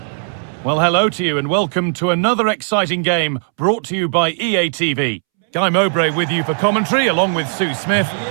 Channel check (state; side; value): silent; left; 68 dB below the other